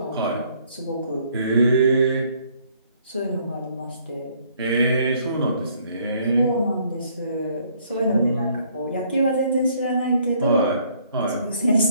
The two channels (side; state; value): both; inverted; correlation -0.64